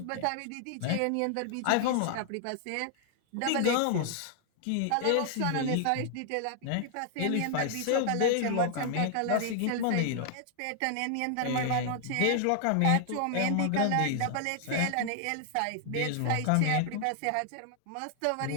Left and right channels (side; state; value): both; different; correlation 0.00